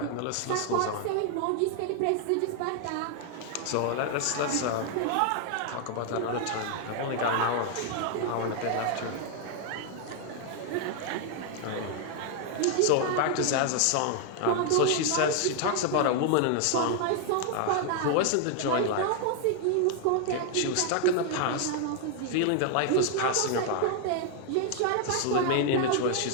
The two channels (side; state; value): both; different; correlation 0.00